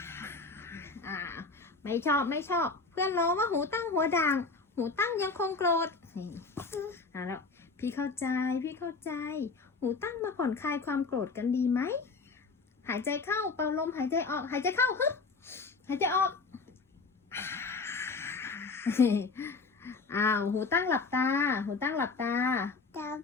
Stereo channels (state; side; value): quieter; right; 4.2 dB